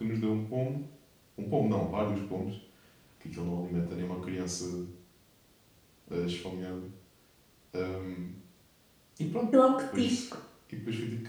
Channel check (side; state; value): both; identical; correlation 1.00